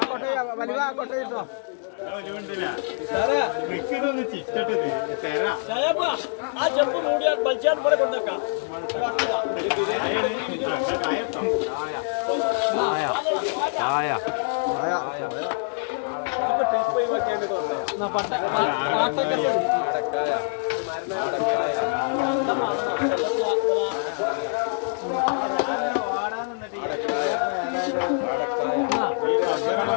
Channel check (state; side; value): silent; right; digital silence